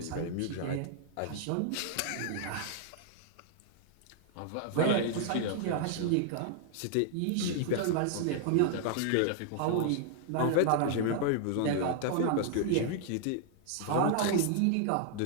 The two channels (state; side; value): different; both; correlation 0.00